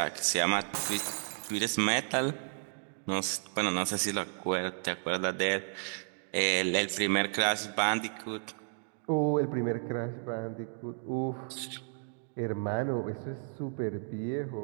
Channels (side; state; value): left; silent; 56 dB below the other